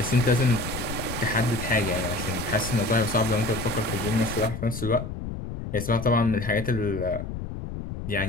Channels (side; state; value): left; noise; rumble, 7 dB below the sound